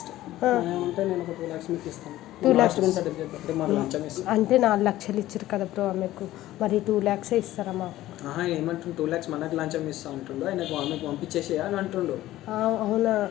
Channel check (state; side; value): quieter; right; 15.1 dB